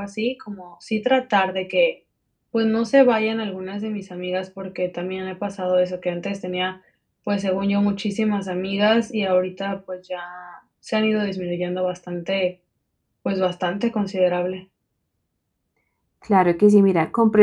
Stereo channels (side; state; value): both; identical; correlation 1.00